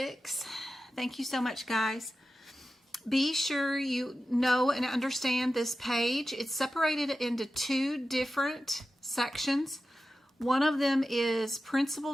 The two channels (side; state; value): both; normal; correlation 0.93